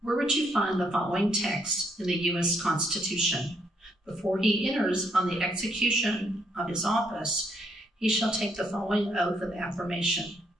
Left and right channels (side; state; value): both; normal; correlation 0.73